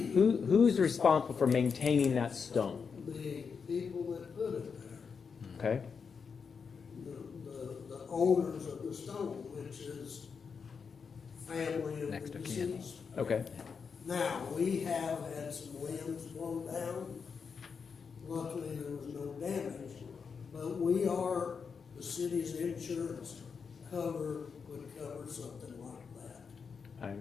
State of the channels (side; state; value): right; quieter; 5.9 dB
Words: responsible for maintaining that stone? the people that put it there, Okay. the owners of the stone, which is family of Next the of kin. deceased. Okay. Now, we have had some limbs blown down. Luckily, there was no damage. But we are, the city's insurance would cover something like that.